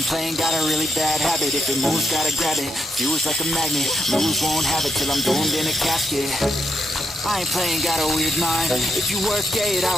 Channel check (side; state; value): both; normal; correlation 0.81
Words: playing, got a really bad habit. If it moves, gotta grab it, fuse like a magnet. Lose, won't have it till I'm doomed in a casket. I ain't playing, got a weird mind. If you work 8